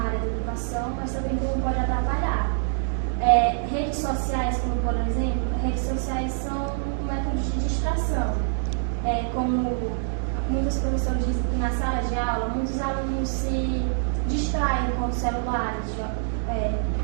da educação, mas também como pode atrapalhar. Redes sociais, como por exemplo, redes sociais são um método de distração. Como muitos professores dizem que na sala de aula, muitos alunos se distraem com celulares,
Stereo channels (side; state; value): left; silent; digital silence